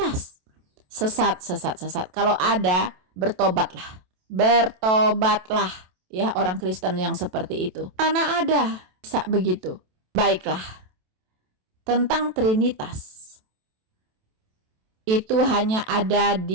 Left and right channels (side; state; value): left; late; 27 ms